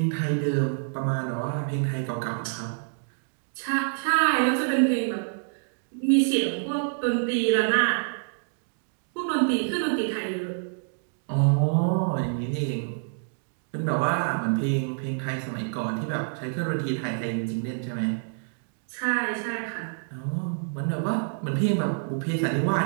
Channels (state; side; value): silent; left; digital silence